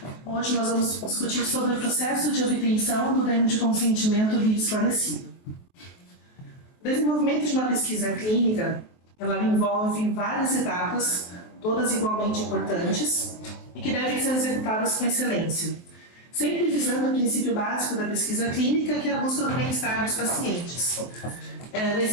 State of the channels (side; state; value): right; late; 23 ms